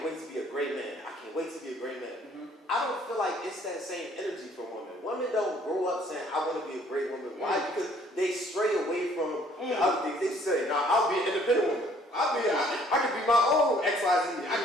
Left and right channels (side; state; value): both; normal; correlation 0.60